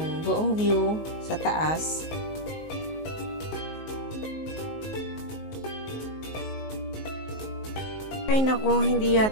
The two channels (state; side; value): late; right; 19 ms